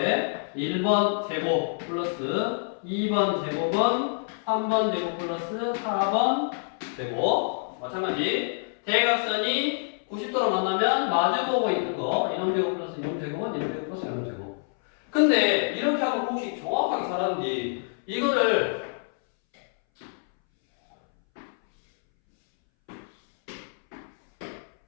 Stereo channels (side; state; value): right; silent; 60 dB below the other